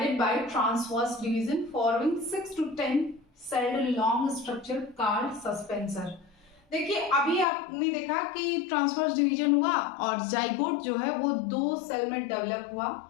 by transverse division forming 6 to 10 celled long structure called suspensor। देखिए अभी आपने देखा कि ट्रांसवर्स डिवीजन हुआ और जाइगोट जो है वो 2 सेल में डेवलप हुआ,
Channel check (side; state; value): right; drops out; at 7.5 s